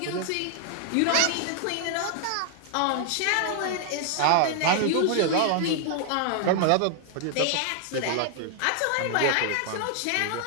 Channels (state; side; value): different; both; correlation 0.00